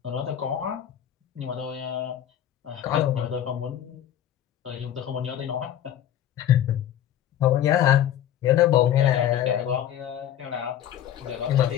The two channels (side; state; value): right; quieter; 10.8 dB